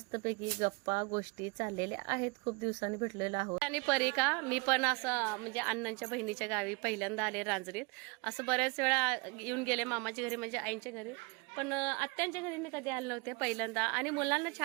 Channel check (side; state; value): left; quieter; 29.7 dB